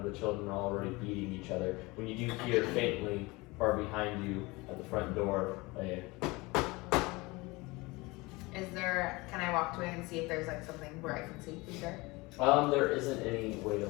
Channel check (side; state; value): right; quieter; 23.5 dB